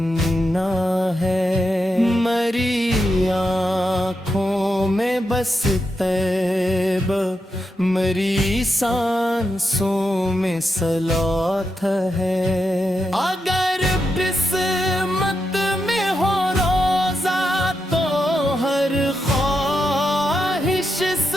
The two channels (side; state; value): both; normal; correlation 0.86